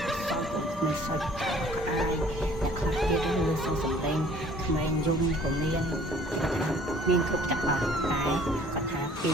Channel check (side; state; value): both; normal; correlation 0.54